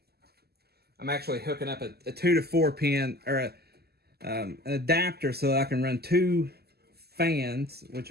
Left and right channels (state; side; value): late; left; 0.46 ms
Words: I'm actually hooking up a 2 to 4 pin, or an adapter, so that I can run 2 fans, which